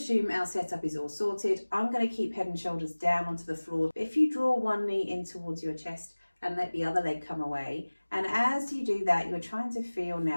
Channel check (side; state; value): both; inverted; correlation -1.00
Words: our setup is all sorted. I'm going to keep head and shoulders down onto the floor. If you draw one knee in towards your chest and let the other leg come away, and as you do that, you're trying to feel